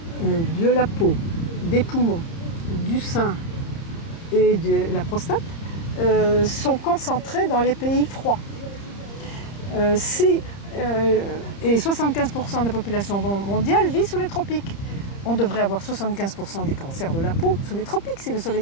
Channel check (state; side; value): late; right; 30 ms